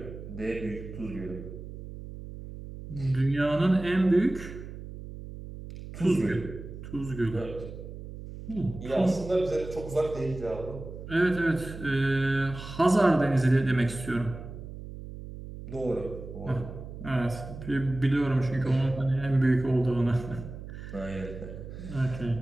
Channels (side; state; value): right; noise; hum, 11 dB below the sound